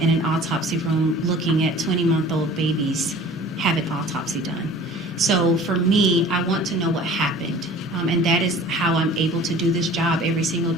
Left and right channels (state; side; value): normal; both; correlation 0.46